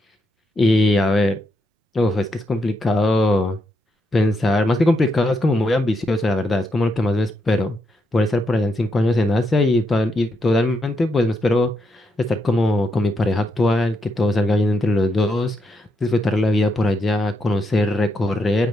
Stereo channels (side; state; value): both; normal; correlation 0.81